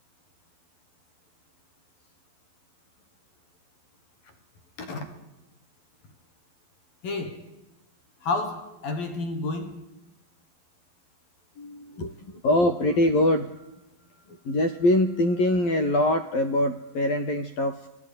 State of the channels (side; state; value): right; late; 11 ms